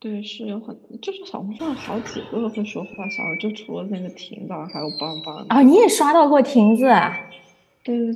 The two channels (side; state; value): both; identical; correlation 1.00